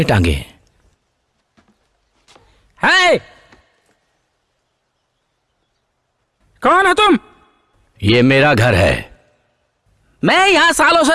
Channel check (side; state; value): both; identical; correlation 1.00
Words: टांगे हैं? है कौन हो तुम? ये मेरा घर है। मैं यहाँ सालों से